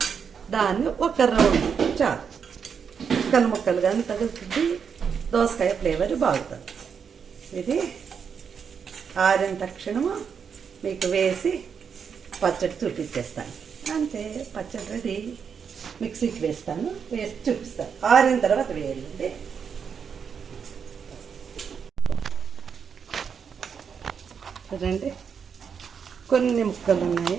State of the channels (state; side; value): quieter; left; 6.7 dB